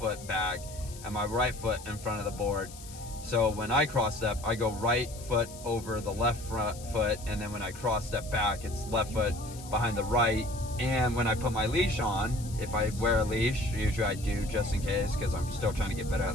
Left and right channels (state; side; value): noise; left; hiss, 16 dB below the sound